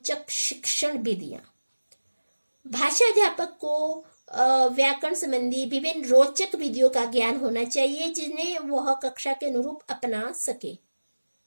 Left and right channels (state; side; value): inverted; both; correlation -1.00